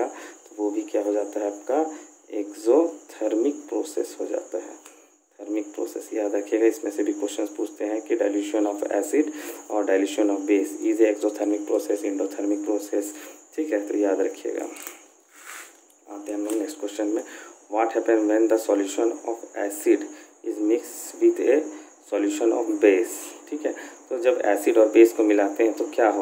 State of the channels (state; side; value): identical; both; correlation 1.00